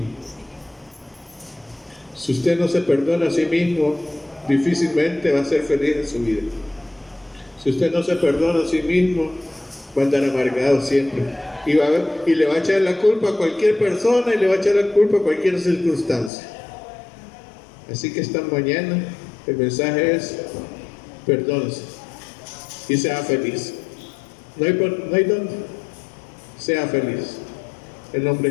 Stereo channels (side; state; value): right; drops out; at 16.3 s